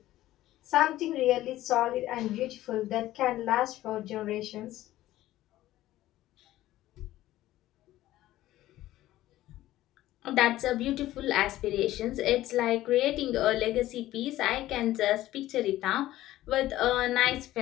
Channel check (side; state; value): right; quieter; 15.0 dB